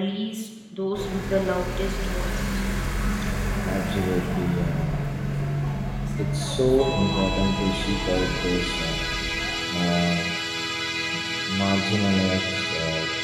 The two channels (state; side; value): identical; both; correlation 1.00